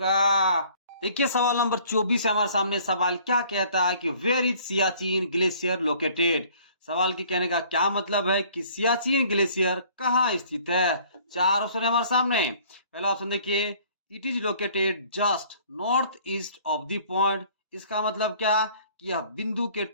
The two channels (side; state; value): both; inverted; correlation -0.55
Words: देखिए सवाल नंबर 24 है हमारे सामने। सवाल क्या कहता है कि where is Siachen glacier located. सवाल के कहने का क्या मतलब है कि सियाचिन ग्लेशियर कहाँ स्थित है? चार ऑप्शन है हमारे सामने। पहला ऑप्शन देखिए it is located just north east of the point. इसका मतलब क्या कि यह बिंदु के